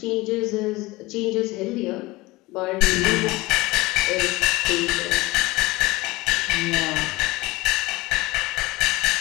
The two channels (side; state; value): right; quieter; 20.9 dB